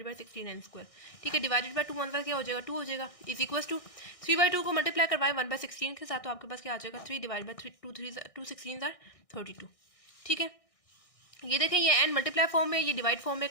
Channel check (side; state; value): right; late; 1.6 ms